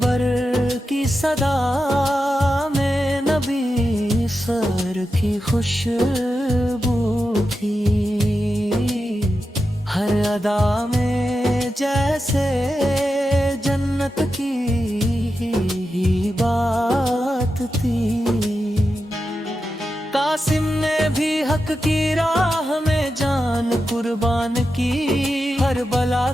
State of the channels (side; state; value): both; normal; correlation 0.90